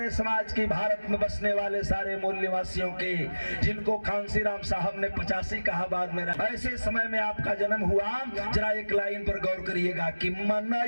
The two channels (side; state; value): both; inverted; correlation -1.00